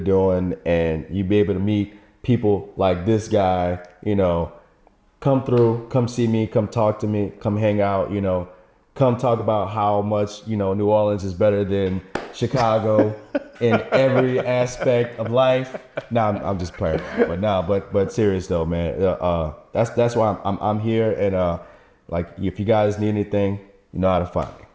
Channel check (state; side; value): identical; both; correlation 1.00